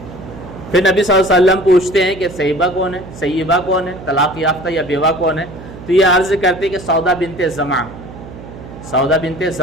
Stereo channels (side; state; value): right; noise; hum, 15 dB below the sound